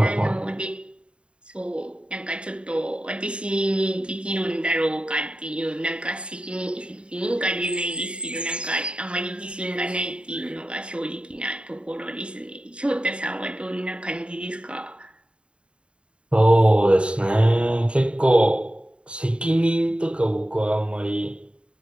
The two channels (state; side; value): late; left; 0.055 ms